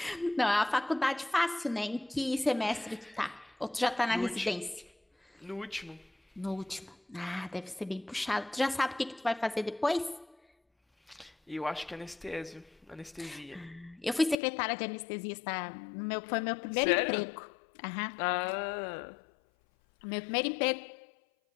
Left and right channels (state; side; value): drops out; right; at 14.4 s